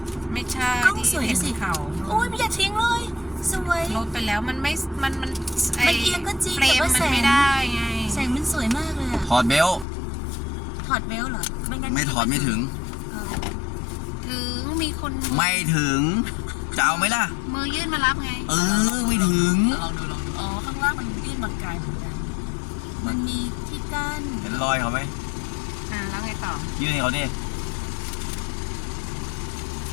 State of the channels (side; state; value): right; drops out; at 9.9 s